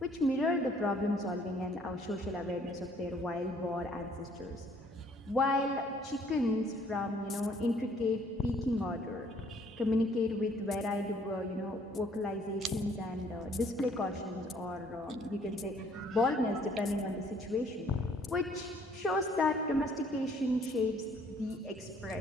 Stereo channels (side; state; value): both; normal; correlation 0.61